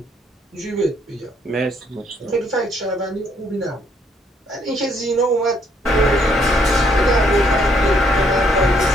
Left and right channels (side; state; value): both; normal; correlation 0.69